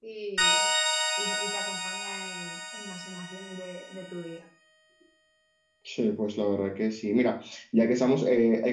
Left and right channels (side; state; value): both; identical; correlation 1.00